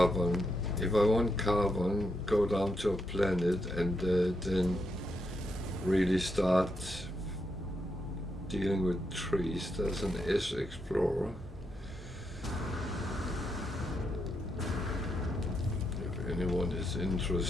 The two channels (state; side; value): normal; both; correlation 0.81